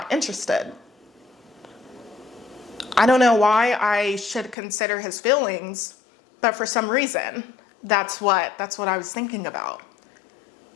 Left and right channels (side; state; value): right; drops out; at 4.5 s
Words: interested? I don't know why I should consider his feelings, but for some reason, that's what I was thinking about.